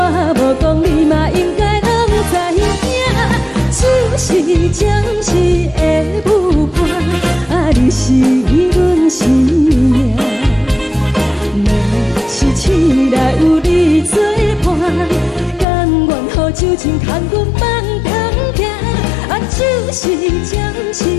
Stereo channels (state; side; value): drops out; right; at 15.7 s